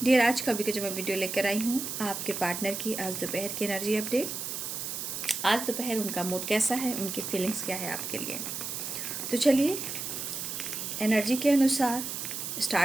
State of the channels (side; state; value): right; noise; hiss, 5 dB below the sound